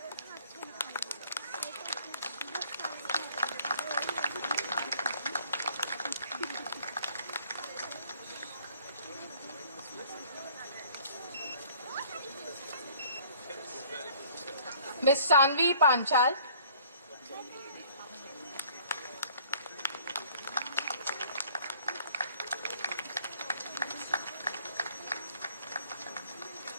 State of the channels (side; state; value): both; inverted; correlation -0.55